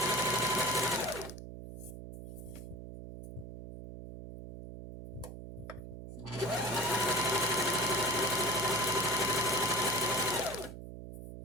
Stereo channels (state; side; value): noise; right; hum, 11 dB below the sound